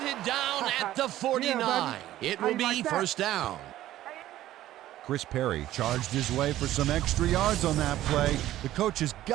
down at the 49. It will be first down. Chris Perry charged his way for some extra yards on that play. The coach has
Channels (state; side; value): quieter; left; 14.0 dB